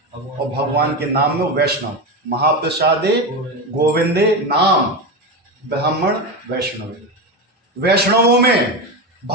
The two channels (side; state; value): both; normal; correlation 0.17